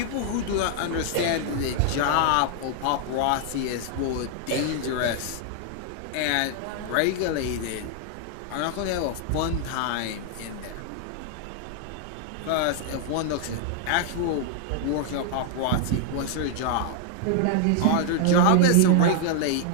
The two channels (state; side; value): different; both; correlation 0.00